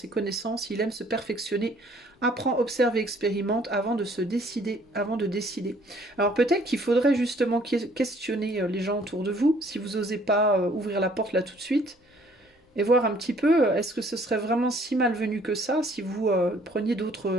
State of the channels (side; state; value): both; normal; correlation 0.60